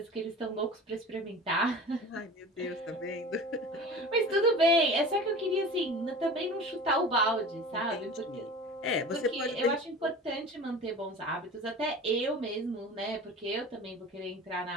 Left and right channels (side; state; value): both; normal; correlation 0.37